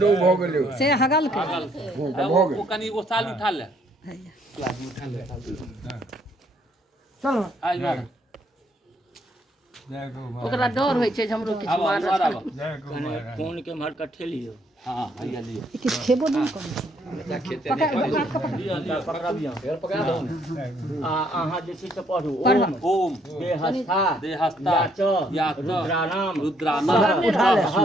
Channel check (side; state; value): both; normal; correlation 0.69